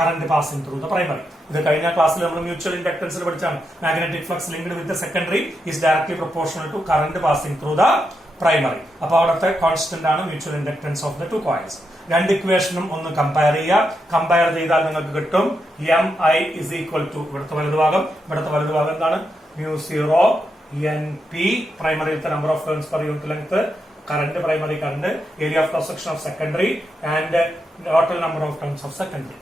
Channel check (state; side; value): normal; both; correlation 0.84